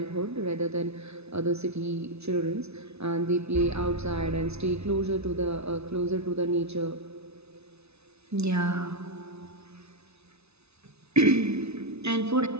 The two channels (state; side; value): late; left; 0.80 ms